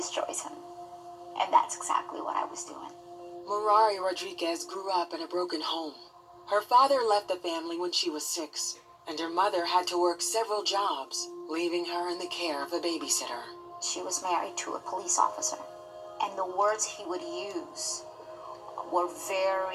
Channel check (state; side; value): identical; both; correlation 1.00